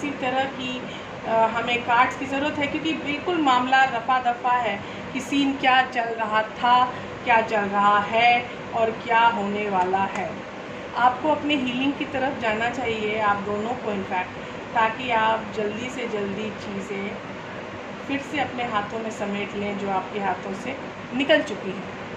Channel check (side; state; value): both; identical; correlation 1.00